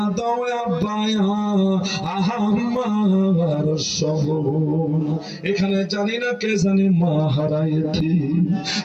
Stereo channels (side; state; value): both; identical; correlation 1.00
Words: দাও আব্বা আমার সবুন এখানে জানি না কে জানি মা হারাইতি